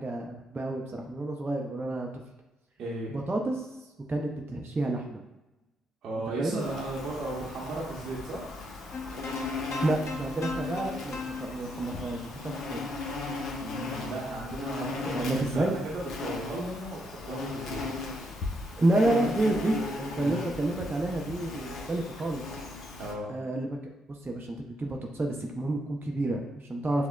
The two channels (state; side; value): normal; both; correlation 0.79